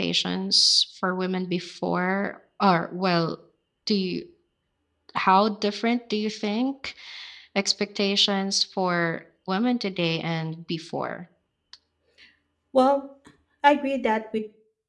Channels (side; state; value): both; identical; correlation 1.00